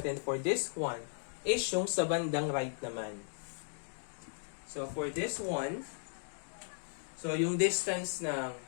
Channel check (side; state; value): right; silent; digital silence